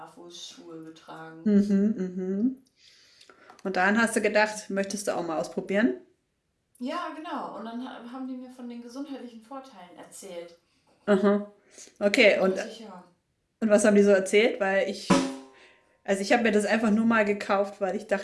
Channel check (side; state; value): both; identical; correlation 1.00